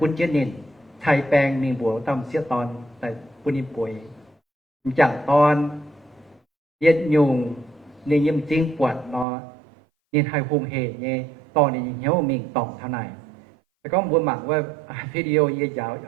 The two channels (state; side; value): drops out; left; at 9.2 s